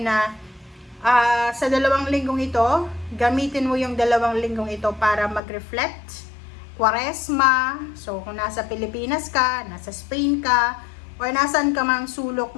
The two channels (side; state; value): right; drops out; at 5.4 s